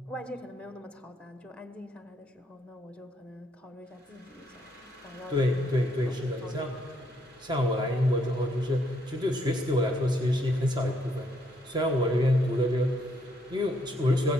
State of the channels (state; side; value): normal; both; correlation 0.72